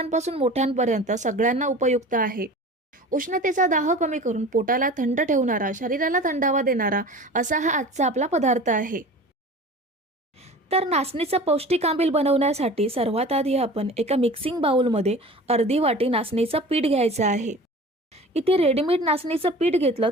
मोठ्यांपर्यंत सगळ्यांना उपयुक्त आहे। उष्णतेचा दाह कमी करून पोटाला थंड ठेवणारा, शरीराला थंडावा देणारा असा हा आजचा आपला पदार्थ आहे। तर नाचणीचं पौष्टिक आंबील बनवण्यासाठी सर्वात आधी आपण एका मिक्सिंग बाउलमध्ये अर्धी वाटी नाचणीचं पीठ घ्यायचं आहे। इथे रेडीमेड नाचणीचं पीठ घेतलं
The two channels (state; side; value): normal; both; correlation 0.39